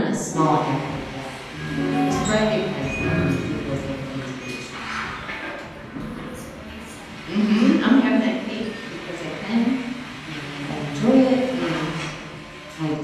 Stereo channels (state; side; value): identical; both; correlation 1.00